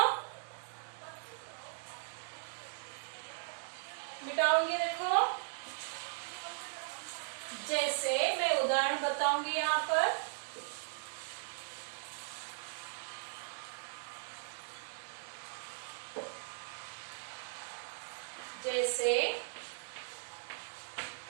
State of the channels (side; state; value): left; silent; 52 dB below the other